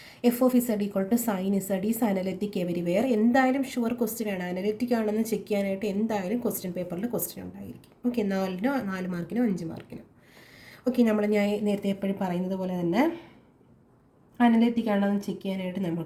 F(z) = sin z is analytic everywhere. എന്തായാലും ഷുവർ ക്വസ്റ്റ്യൻ ആണ്. അനലിറ്റിക് ആണെന്ന് ചെക്ക് ചെയ്യാനായിട്ട് എന്തായാലും ക്വസ്റ്റ്യൻ പേപ്പറിൽ ക്വസ്റ്റ്യൻ ഉണ്ടായിരിക്കും. ഓക്കെ. 4 മാർക്കിനോ 5 മാർക്കിനോ. ഓക്കെ. ഞാൻ നേരത്തെ എപ്പോഴും പറയുന്നത് പോലെ തന്നെ അനലിറ്റിക് ആണെന്ന് ചെക്ക് ചെയ്യാനായിട്ട്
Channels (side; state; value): both; identical; correlation 1.00